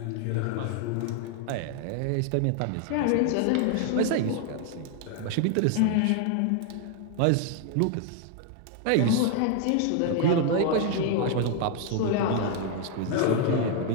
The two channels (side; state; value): both; different; correlation 0.00